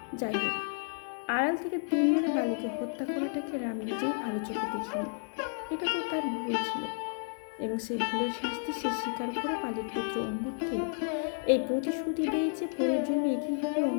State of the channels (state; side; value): silent; right; digital silence